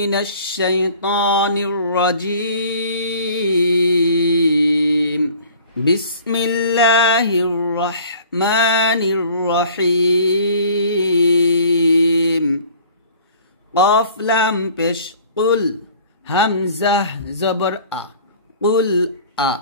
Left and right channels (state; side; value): inverted; both; correlation -0.49